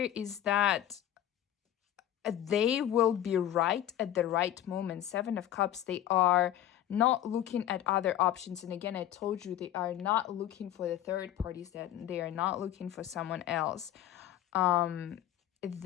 is that they will be right at the right moment. Seven of Cups, they are not looking at other options. And again, I told you, they are not looking for the third parties, that they are not looking for someone else.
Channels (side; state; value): right; quieter; 11.8 dB